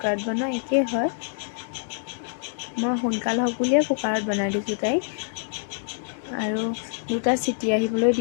বনোৱা একেই হয়। মই সোনকাল হওক বুলিয়ে কুকাৰত বনাই দিছোঁ তাইক। আৰু 2টা চিটি আহিবলৈ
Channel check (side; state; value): right; silent; digital silence